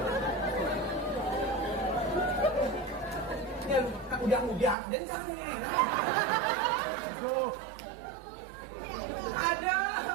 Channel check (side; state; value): left; drops out; at 4.8 s